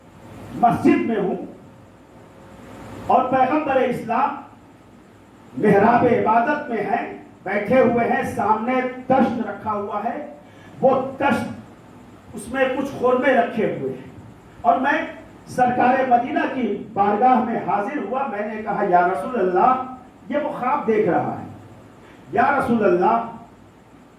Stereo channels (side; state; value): both; identical; correlation 1.00